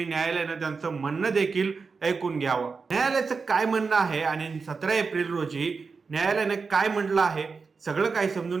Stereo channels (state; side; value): quieter; left; 4.8 dB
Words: न्यायालयानं त्यांचं म्हणणं देखील ऐकून घ्यावं. न्यायालयाचं काय म्हणणं आहे आणि 17 एप्रिल रोजी न्यायालयाने काय म्हटलं आहे सगळं काही